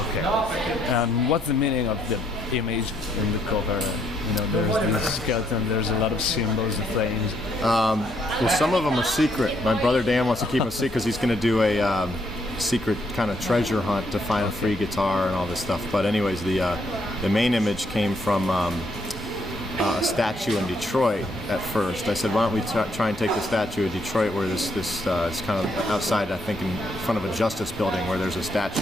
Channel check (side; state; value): both; normal; correlation 0.72